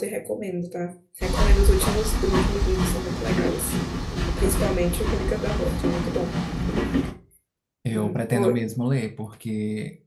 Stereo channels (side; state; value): both; identical; correlation 1.00